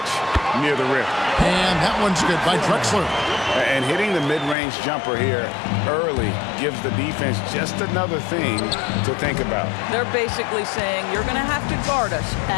near the rim. And that one's good by Drexler. And hitting the mid-range jumper here early gives the defense just another thing to think about. They're basically saying you're going to have to guard us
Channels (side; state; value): right; drops out; at 4.5 s